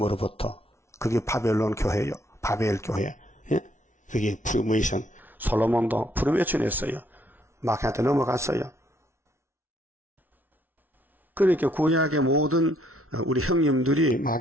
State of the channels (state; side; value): normal; both; correlation 0.69